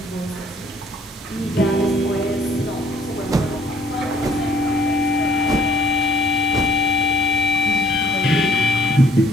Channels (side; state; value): both; normal; correlation 0.59